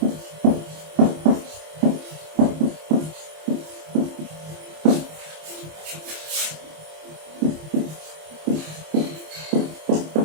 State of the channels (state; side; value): late; left; 26 ms